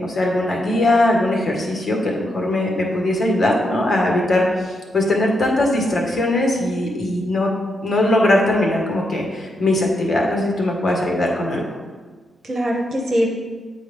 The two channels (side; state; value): both; normal; correlation 0.81